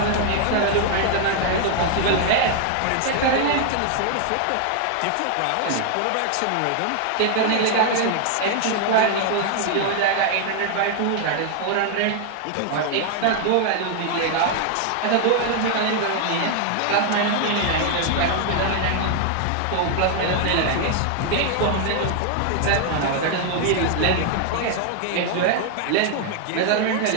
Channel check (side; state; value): both; different; correlation 0.00